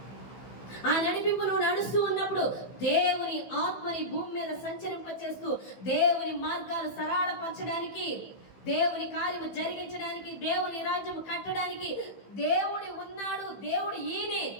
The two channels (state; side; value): late; right; 15 ms